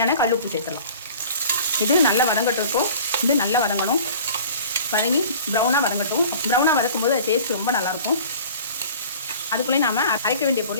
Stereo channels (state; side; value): inverted; both; correlation -0.45